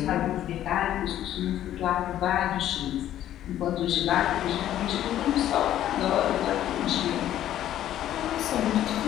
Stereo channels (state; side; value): quieter; right; 12.1 dB